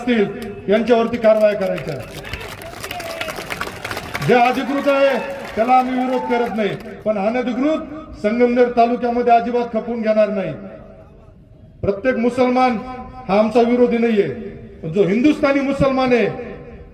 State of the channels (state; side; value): identical; both; correlation 1.00